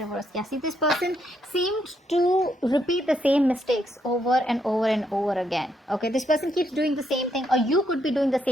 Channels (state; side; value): normal; both; correlation 0.76